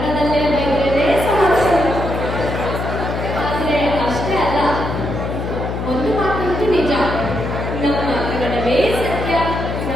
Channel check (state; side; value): noise; left; hum, 4 dB below the sound